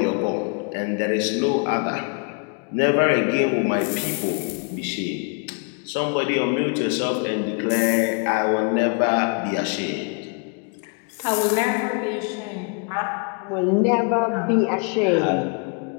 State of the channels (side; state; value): right; quieter; 37.8 dB